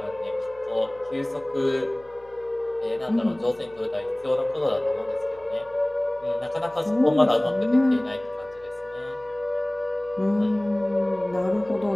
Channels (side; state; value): left; noise; hum, 26 dB below the sound